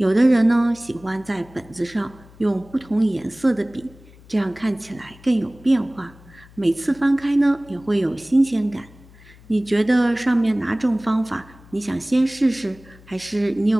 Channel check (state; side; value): noise; left; hum, 24 dB below the sound